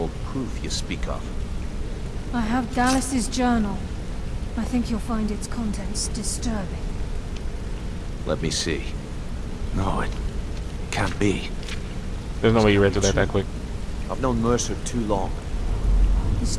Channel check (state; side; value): identical; both; correlation 1.00